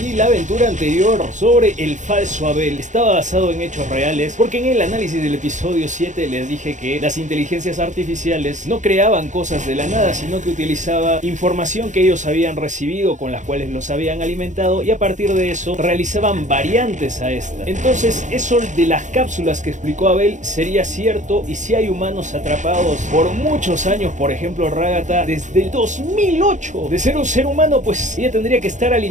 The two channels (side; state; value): left; late; 0.35 ms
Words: la aventura anterior sobre el falso Abel estaba basado en hechos reales, porque en el análisis del episodio 7 les dije que las inteligencias artificiales no creaban cosas de la nada, sino que utilizaba información que ellos habían recibido, con las cuales los habían alimentado, y a partir de eso realizaban variantes a esta. Entonces eso de las cápsulas que explicó Abel sería cierto, y si hay humanos atrapados por muchos años, por ejemplo Ragata desde el 2008 8. De ser un ser humano, pues ella tendría que estar